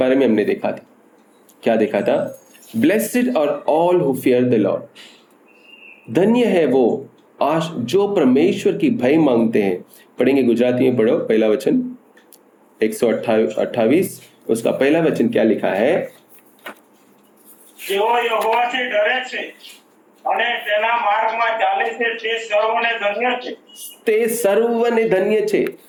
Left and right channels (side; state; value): both; identical; correlation 1.00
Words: में हमने देखा था। क्या देखा था? Blessed are all who fear the Lord, धन्य है वो जो परमेश्वर की भय मांगते हैं। पढ़ेंगे, गुजराती में पढ़ो। पहला वचन 128 उसका पहला वचन क्या लिखा है? જેઓ યહોવાથી ડરે છે અને તેના માર્ગમાં ચાલે છે તે સર્વને ધન્ય છે। તે સર્વને ધન્ય છે।